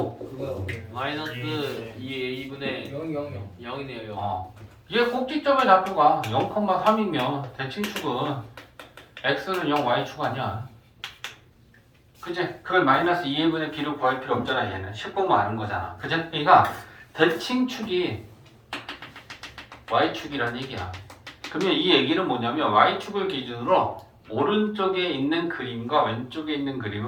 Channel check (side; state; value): both; identical; correlation 1.00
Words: 그거요. 마이너스 2a분의 0 0 0. 0이네요 0. 얘 꼭지점의 좌표가 0,3이면 대칭축은 x는 0, y축 아니야. 그지? 그걸 마이너스 2분의 b로 구할 필요 없잖아. 얘는 10 보면 아는 거잖아. 그지? 그러니까 대칭축이 y축이란 얘기야. 그러면 이 얘기는 뭐냐면 y축을 기준으로 오른쪽에 있는 그림과 왼쪽에 있는